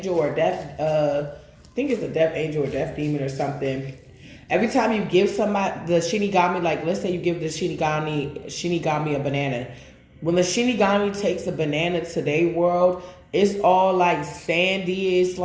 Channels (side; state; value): both; identical; correlation 1.00